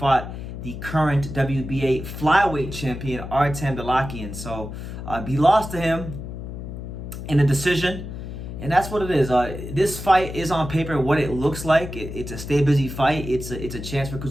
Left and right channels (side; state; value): left; noise; hum, 9 dB below the sound